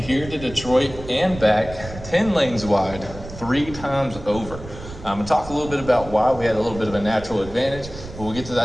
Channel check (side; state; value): right; noise; rumble, 13 dB below the sound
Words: to Detroit and back 10 lanes wide 3 times over. I'm going to talk a little bit about why we had a little bit of a natural advantage, but we'll get to